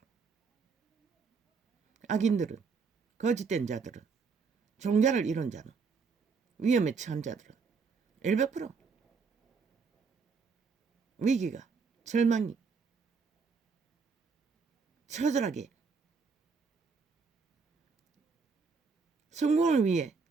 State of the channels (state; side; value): quieter; left; 5.1 dB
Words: 악인들은 거짓된 자들은 종자를 잃은 자는 위험에 처한 자들은 100% 위기가 절망이 처절하게 성공을 위해